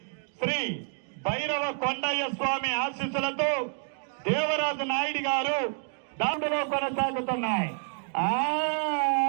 శ్రీ భైరవ కొండయ్య స్వామి ఆశీస్సులతో దేవరాజు నాయుడు గారు దాంట్లో కొనసాగుతున్నాయి.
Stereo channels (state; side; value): silent; left; 59 dB below the other